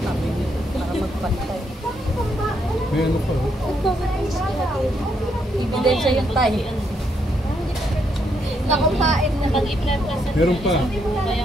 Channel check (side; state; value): both; normal; correlation 0.76